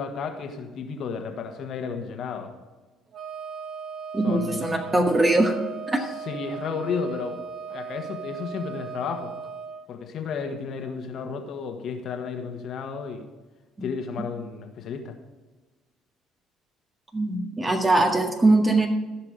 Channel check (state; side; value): normal; both; correlation 0.79